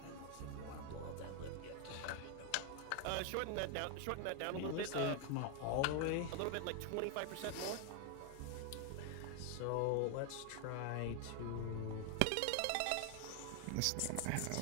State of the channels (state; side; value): different; both; correlation 0.01